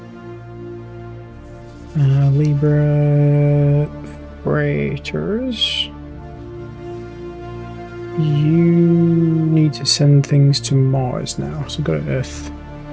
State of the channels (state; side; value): identical; both; correlation 1.00